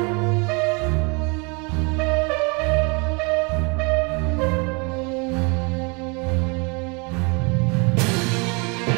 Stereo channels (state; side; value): quieter; left; 31.3 dB